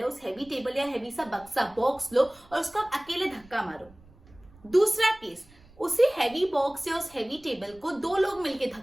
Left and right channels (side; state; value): right; noise; rumble, 26 dB below the sound